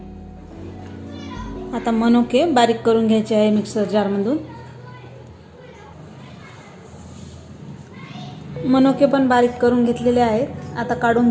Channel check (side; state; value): both; identical; correlation 1.00